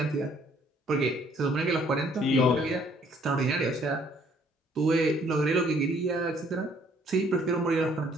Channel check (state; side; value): normal; both; correlation 0.62